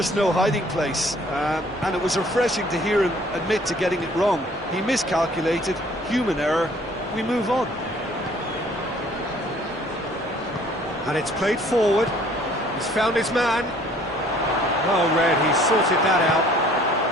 no hiding place, and it was refreshing to hear him admit to getting it wrong. He miscalculated, human error, we move on. And it's played forward, he's found his man. Well read, he's sorted that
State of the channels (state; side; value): normal; both; correlation 0.57